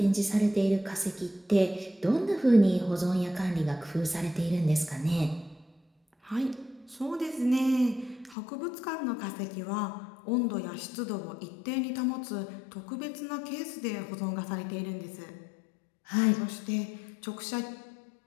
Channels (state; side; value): drops out; right; at 8.3 s